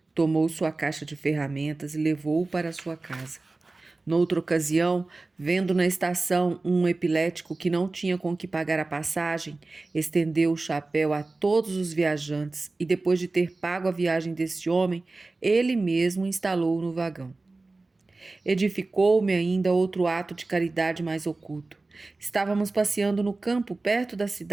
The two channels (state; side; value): quieter; left; 3.3 dB